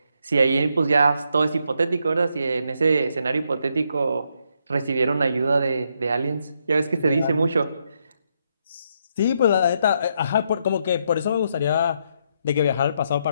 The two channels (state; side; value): inverted; both; correlation -0.77